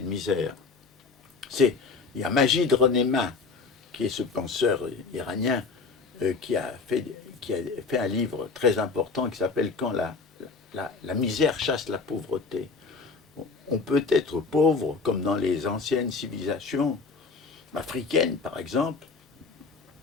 misère? Il y a Majid Renéma, qui est ce penseur iranien qui a fait un livre très important qui s'appelle « Quand la misère chasse la pauvreté ». On peut être pauvre comme dans les anciennes civilisations africaines, par exemple.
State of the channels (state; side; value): quieter; right; 4.5 dB